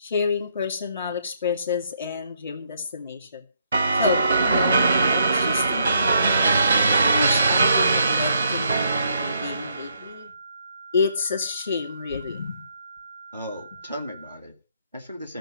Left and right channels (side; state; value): both; inverted; correlation -0.73